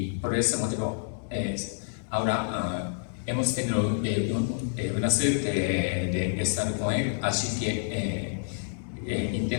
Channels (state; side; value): silent; right; digital silence